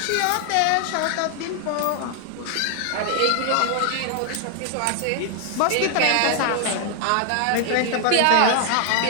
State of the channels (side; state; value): both; different; correlation 0.00